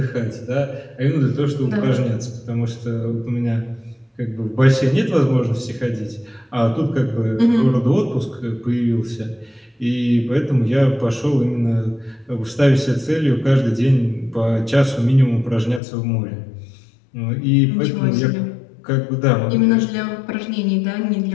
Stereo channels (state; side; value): drops out; right; at 15.8 s